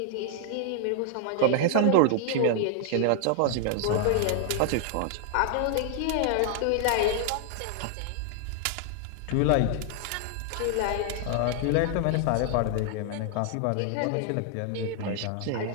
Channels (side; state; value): both; different; correlation 0.00